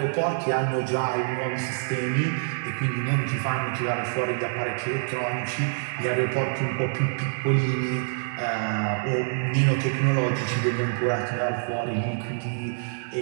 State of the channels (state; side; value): silent; left; digital silence